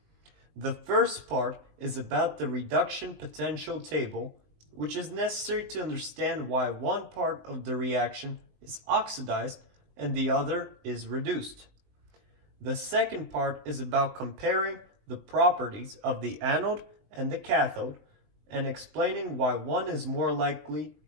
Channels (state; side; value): late; left; 19 ms